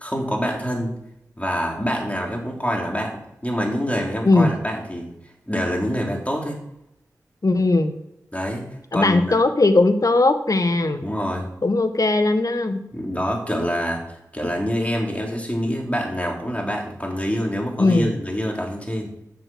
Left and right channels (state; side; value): normal; both; correlation 0.86